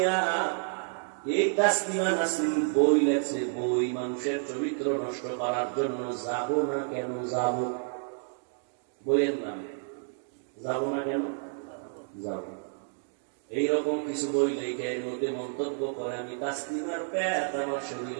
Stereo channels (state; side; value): silent; left; digital silence